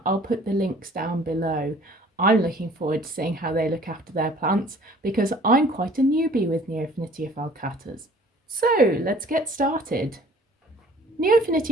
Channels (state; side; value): normal; both; correlation 0.53